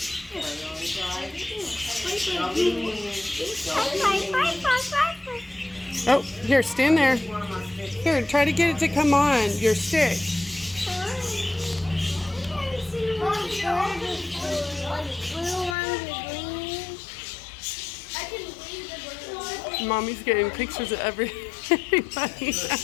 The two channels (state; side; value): drops out; right; at 15.8 s